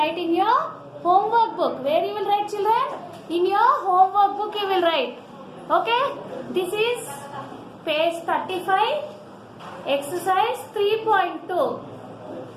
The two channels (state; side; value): identical; both; correlation 1.00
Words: in your homework book. Where you will write children? In your homework book you will write. Okay? This is page 35, exercise 3.2.